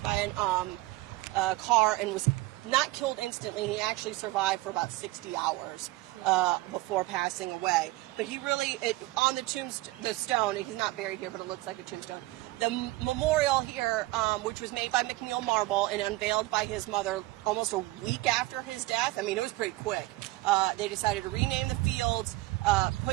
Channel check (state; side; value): quieter; left; 19.3 dB